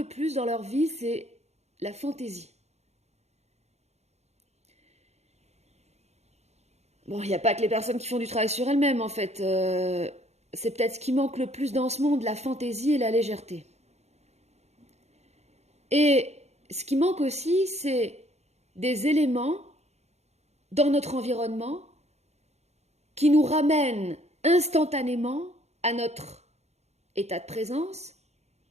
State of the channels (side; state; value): left; late; 0.32 ms